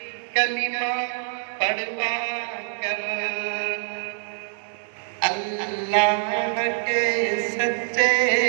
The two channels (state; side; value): silent; left; digital silence